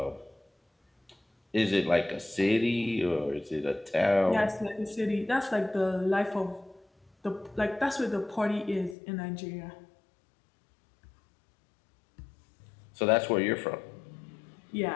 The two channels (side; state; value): right; drops out; at 9.0 s